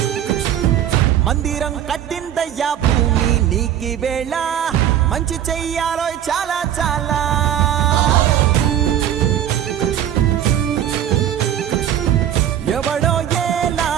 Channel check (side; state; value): left; quieter; 10.6 dB